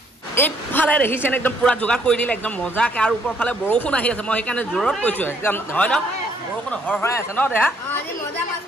এইফালে দেখিছেনে একদম পুৰা যোগাৰ কৰি দিলে একদম মজাকৈ আৰু ওপৰৰ ফালে বৰষুণ আহি আছে মই সেইকাৰণে জোৰত কৈছোঁ একদম হয় ন বৰষুণ হৰহৰাই আছে ন দেহা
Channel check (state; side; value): normal; both; correlation 0.67